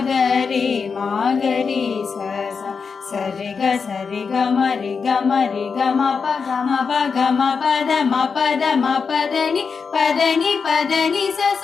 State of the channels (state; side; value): quieter; right; 5.5 dB